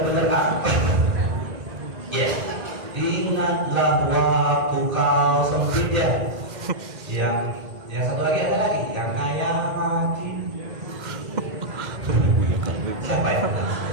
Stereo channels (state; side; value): late; left; 2.0 ms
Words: aktif. Ya, ingatlah waktu kau sempit ya. Yang satu lagi ada lagi, yang kaya mati. Siapa ya?